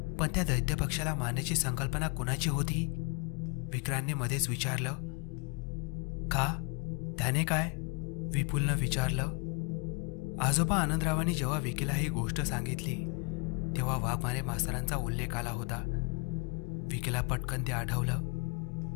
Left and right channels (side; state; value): right; quieter; 32.5 dB